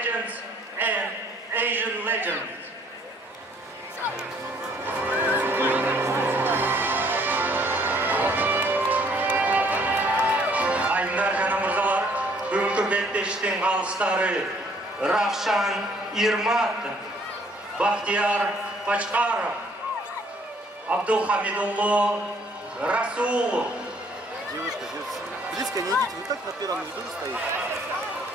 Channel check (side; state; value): both; normal; correlation 0.62